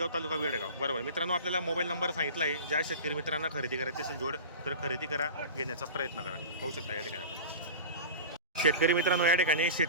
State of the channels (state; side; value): inverted; both; correlation -0.33